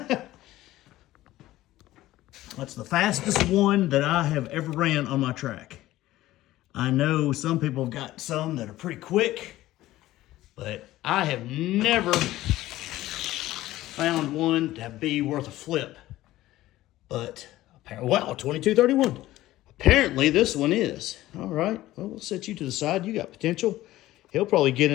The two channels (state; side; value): quieter; right; 15.8 dB